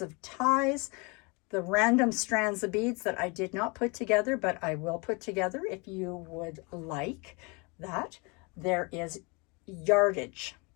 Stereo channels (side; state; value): right; quieter; 29.8 dB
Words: of ties, the random strands of beads that I did not put together, but I will put together if you would like that. There is yardage.